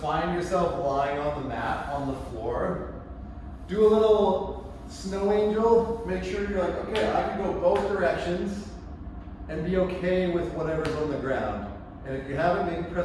yourself lying on the mat, on the floor. Do a little snow angel. Make sure you're like, okay, I can go both directions and be okay with whatever's on the ground. And if you haven't, maybe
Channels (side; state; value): both; identical; correlation 1.00